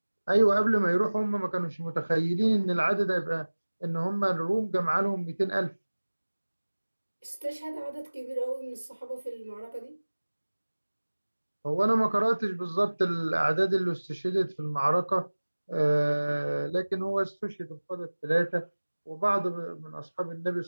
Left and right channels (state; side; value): inverted; both; correlation -1.00